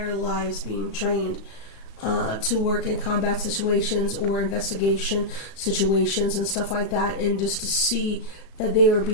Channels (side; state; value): right; late; 36 ms